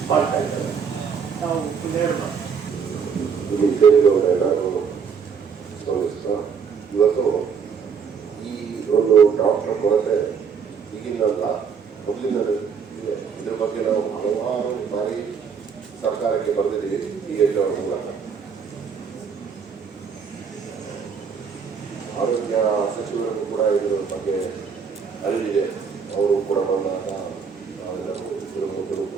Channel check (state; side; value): quieter; left; 6.3 dB